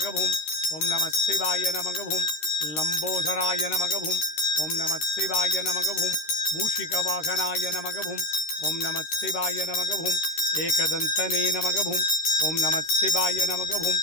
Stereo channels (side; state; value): right; late; 13 ms